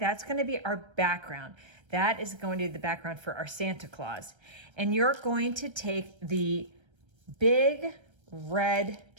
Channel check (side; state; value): left; late; 1.3 ms